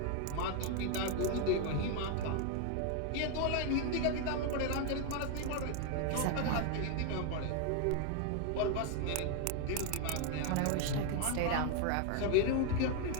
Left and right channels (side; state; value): both; different; correlation 0.01